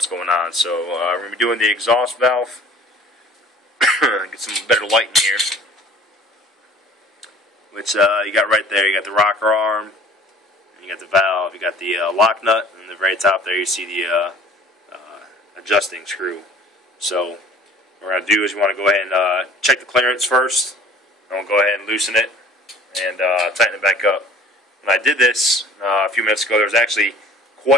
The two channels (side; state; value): both; normal; correlation 0.49